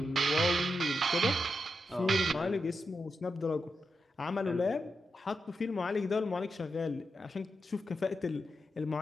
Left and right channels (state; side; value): normal; both; correlation 0.87